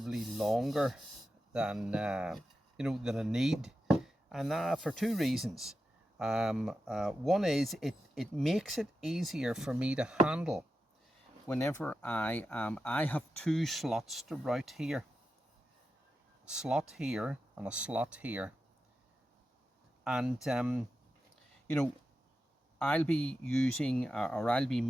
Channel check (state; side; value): normal; both; correlation 0.90